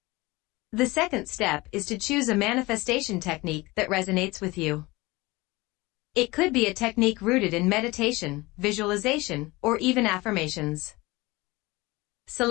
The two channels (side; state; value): right; quieter; 22.1 dB